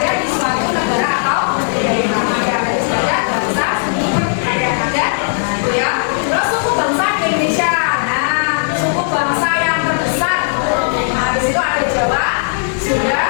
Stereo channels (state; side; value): silent; right; 59 dB below the other